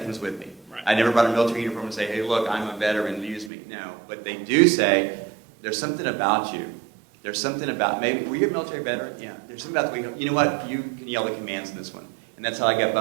comes with me. Right. I never brought a military uniform and say, hey, look, I'm a veteran, use me. No. But they do say, there's something about you. There's something about, maybe, were you a military veteran? Yeah. There's something about the way you know what? You can yell the commands in this one. And that's how I got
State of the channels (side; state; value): left; drops out; at 3.5 s